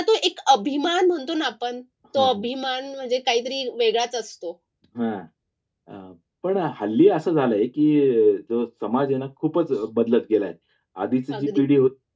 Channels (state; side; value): identical; both; correlation 1.00